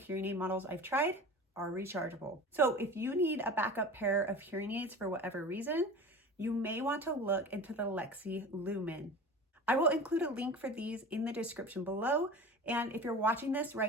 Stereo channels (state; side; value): normal; both; correlation 0.35